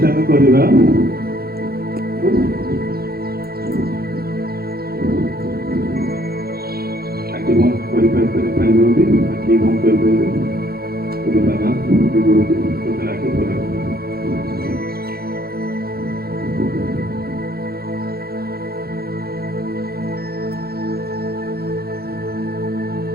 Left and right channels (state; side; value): late; left; 0.45 ms